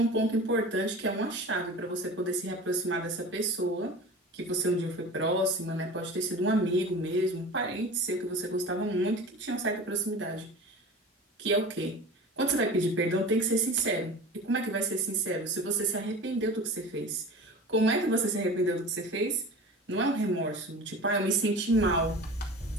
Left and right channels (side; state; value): both; normal; correlation 0.36